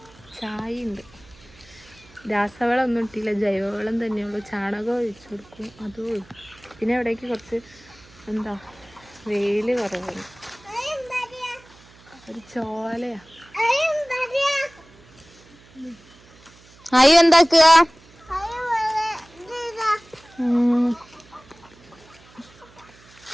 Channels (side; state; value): right; noise; hum, 26 dB below the sound